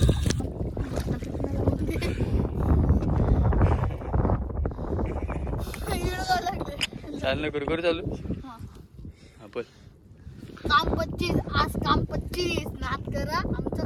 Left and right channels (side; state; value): both; identical; correlation 1.00